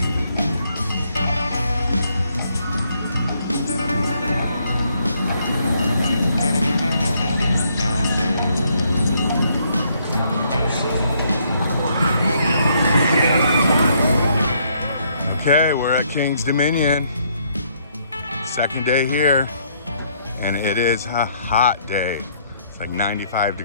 Okay, we're at King's Dominion. Second day here, and it is a hot day. It's like 95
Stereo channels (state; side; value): inverted; both; correlation -0.70